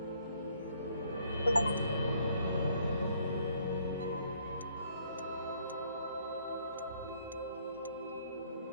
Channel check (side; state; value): both; inverted; correlation -0.65